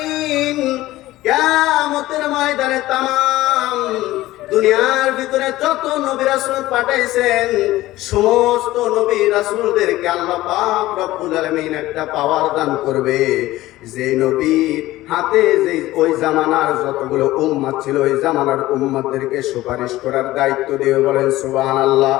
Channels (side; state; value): right; quieter; 16.8 dB